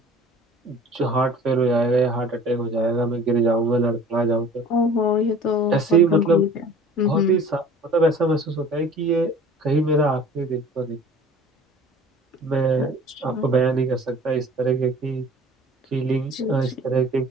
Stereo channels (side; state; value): both; normal; correlation 0.46